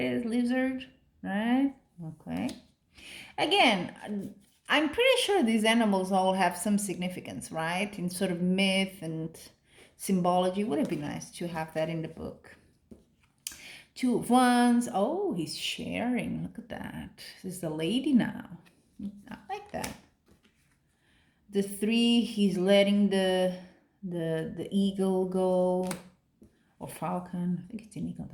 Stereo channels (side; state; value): both; identical; correlation 1.00